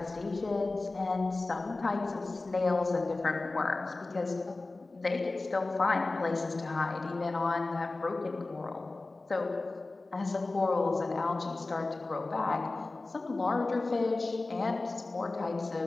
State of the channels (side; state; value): right; quieter; 3.3 dB